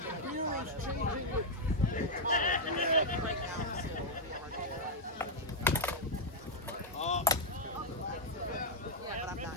Beer is changing with Yeah, but I'm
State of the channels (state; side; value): normal; both; correlation -0.03